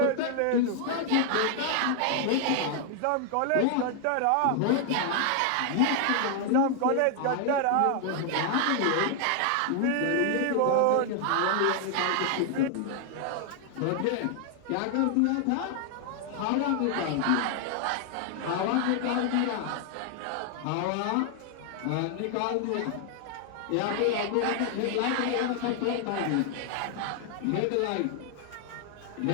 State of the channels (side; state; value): both; different; correlation 0.00